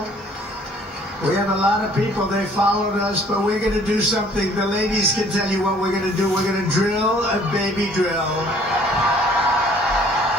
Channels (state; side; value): normal; both; correlation 0.56